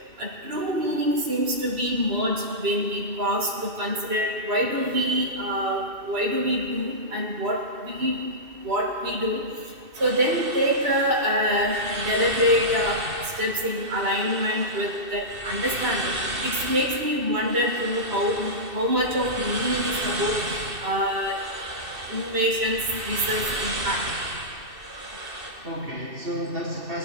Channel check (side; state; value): left; late; 2.6 ms